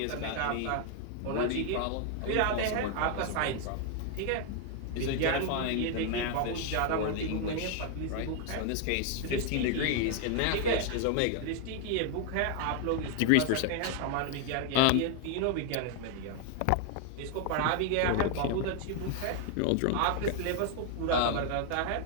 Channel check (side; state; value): both; different; correlation 0.00